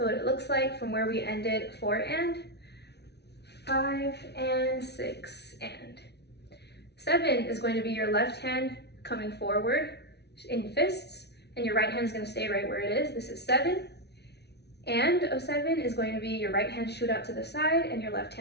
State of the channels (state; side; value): late; right; 0.49 ms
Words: what it looks like from where we ended 4 and, 5 and 6 and. 7 is going to be your left hand coming forward in fists, and your right hand is going to stay right where it is. This is 7. And of 7 is going to be your right hand shoot out to the side, and your left